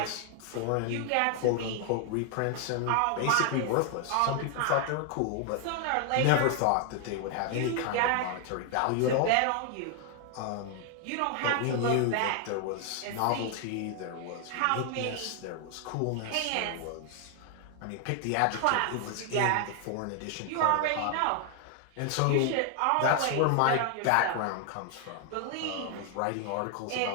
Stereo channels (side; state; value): both; different; correlation 0.00